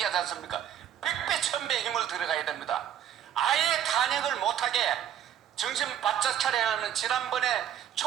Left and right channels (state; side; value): quieter; left; 10.0 dB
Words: 않습니까? 100배 1000배 힘을 들어가야 됩니다. 아예 탄핵을 못하게 정신 바짝 차려야 하는 지난번에